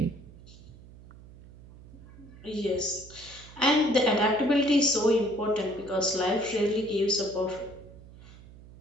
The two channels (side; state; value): right; noise; hum, 20 dB below the sound